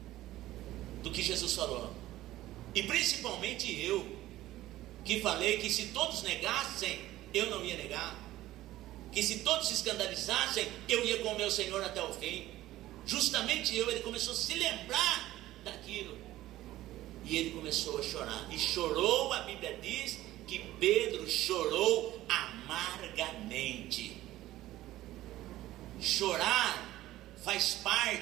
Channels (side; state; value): left; quieter; 15.4 dB